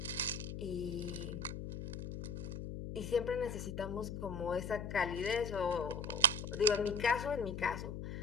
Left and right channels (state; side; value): noise; left; hum, 6 dB below the sound